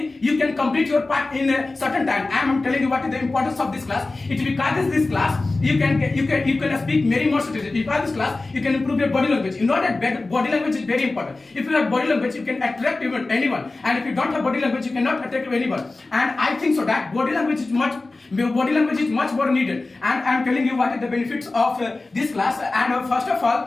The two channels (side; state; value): right; quieter; 3.3 dB